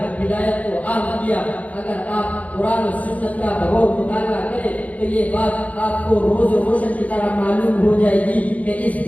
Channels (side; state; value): right; late; 0.070 ms